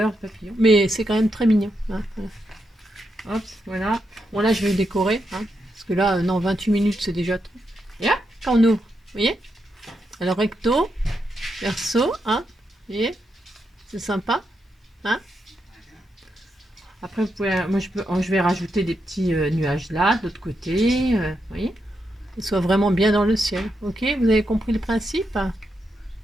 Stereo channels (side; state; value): both; normal; correlation 0.83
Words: papillons. Mais c'est quand même très mignon. Hein, voilà. Hop, voilà. Bon là je vais décorer. Hein, parce que là, non, 28 minutes c'est déjà trop. Et là, quand on ouvre, vous voyez. Alors recto, verso, hein. Vous voyez. C'est sympa. Hein. Après, vous pouvez, moi je vais rajouter des petits nuages là, de l'autre côté. Vous voyez. Qu'ils soient vraiment bien dans le ciel. Ok, vous avez compris le principe?